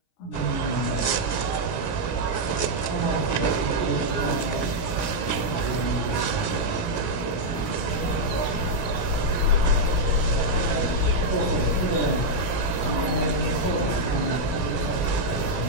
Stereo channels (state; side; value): late; right; 17 ms